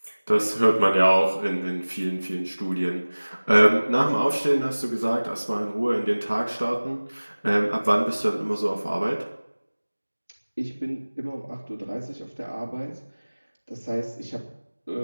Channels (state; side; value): inverted; both; correlation -1.00